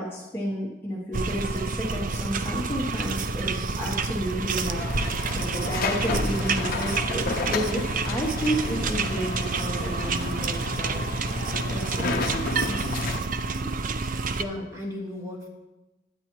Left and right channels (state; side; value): normal; both; correlation 0.49